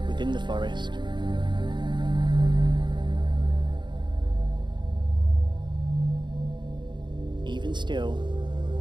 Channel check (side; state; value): left; late; 0.22 ms